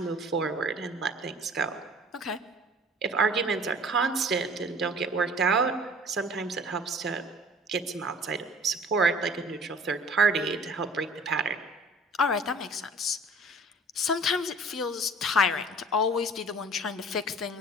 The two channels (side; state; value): both; normal; correlation 0.48